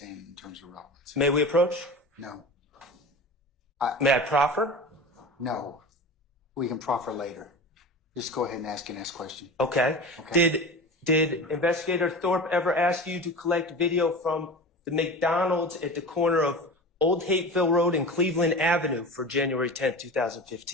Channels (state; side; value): normal; both; correlation 0.32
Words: in terms of relevance. May we approach? No. May I proffer? No. We can proffer later. Just go ahead and ask your next question. Okay. Okay. Did Investigator Thorpe ever ask you to collect video from the McDonald's at the corner of Old Hateville Road and Cleveland Avenue for January 10th,